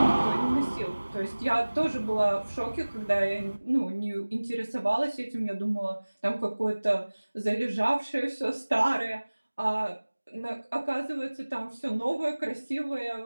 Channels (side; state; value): both; inverted; correlation -1.00